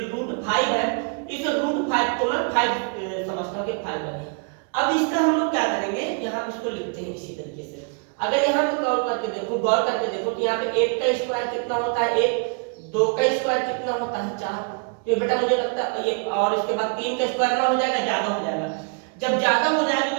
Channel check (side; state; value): left; quieter; 37.9 dB